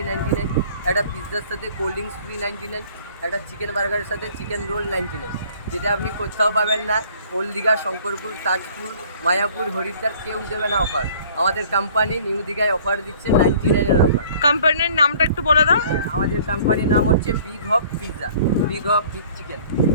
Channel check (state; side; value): inverted; both; correlation -0.53